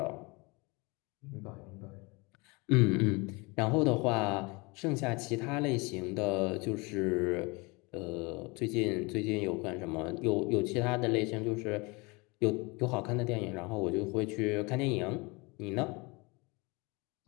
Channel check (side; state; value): right; quieter; 26.8 dB